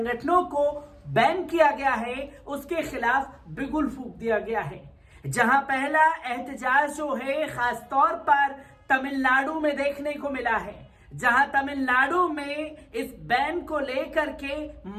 को बैन किया गया है उसके खिलाफ बिगुल फूंक दिया गया है। जहां पहला एहतजाज जो है खासतौर पर तमिलनाडु में देखने को मिला है, जहां तमिलनाडु में इस बैन को लेकर के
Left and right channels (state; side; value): identical; both; correlation 1.00